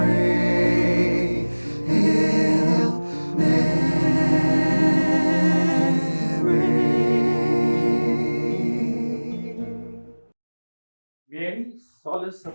Hail Mary. Mary, Solace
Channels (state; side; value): inverted; both; correlation -1.00